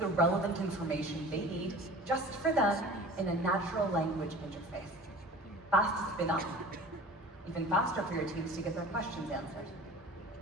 relevant information they need just for them in a natural language interface. Fast to spin up, even faster for your teams to get their questions answered.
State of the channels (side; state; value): both; normal; correlation 0.41